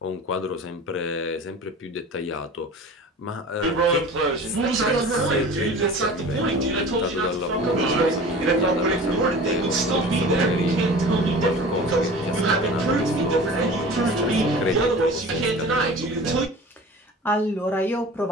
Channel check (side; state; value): both; normal; correlation 0.39